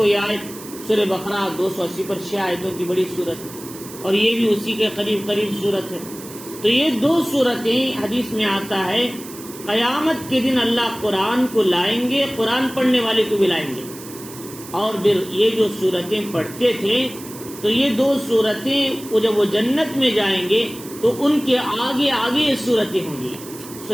یہ آیت سورہ بقرہ 280 پر 6 آیتوں کی بڑی صورت ہے، اور یہ بھی اسی کے قریب صورت ہے۔ تو یہ 2 صورتیں حدیث میں آتا ہے قیامت کے دن اللہ قرآن کو لائیں گے، قرآن پڑھنے والے کو بھی لائیں گے، اور پھر یہ جو صورتیں پڑھتے تھے تو یہ 2 صورتیں جب وہ جنت میں جائیں گے تو ان کے آگے آگے یہ صورتیں ہوں گی،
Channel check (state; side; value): noise; right; hiss, 15 dB below the sound